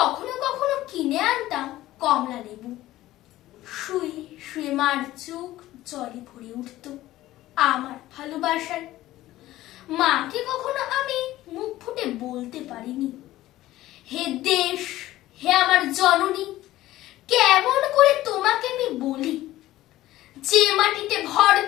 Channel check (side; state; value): right; quieter; 15.7 dB